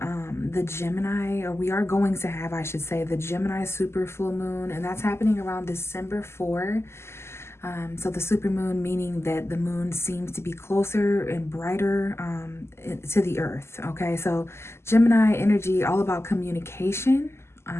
the Gemini, or we are going to have, I should say, the Gemini super full moon, and that's happening around December 4. So the supermoon, meaning that the moon seems to be closer and brighter to the earth. Okay, so Gemini energy, all about communication,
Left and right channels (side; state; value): right; late; 0.12 ms